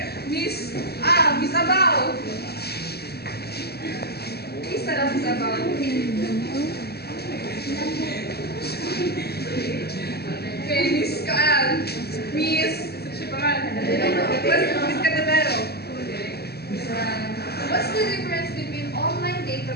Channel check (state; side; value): late; right; 0.46 ms